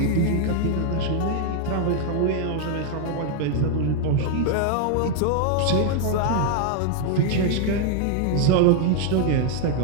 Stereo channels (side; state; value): both; different; correlation 0.00